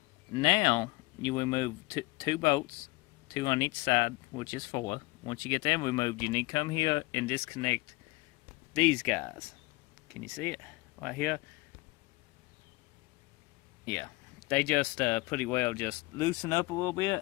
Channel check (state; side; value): quieter; right; 22.5 dB